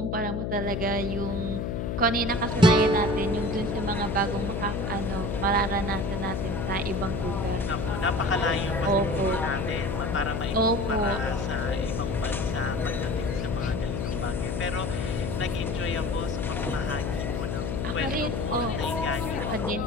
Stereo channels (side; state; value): left; noise; hum, 2 dB below the sound